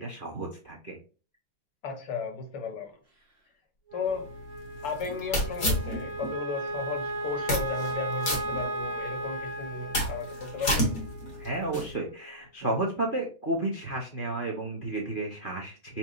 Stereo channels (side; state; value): right; late; 4.9 ms